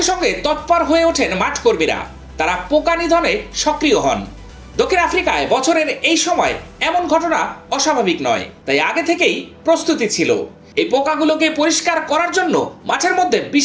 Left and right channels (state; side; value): identical; both; correlation 1.00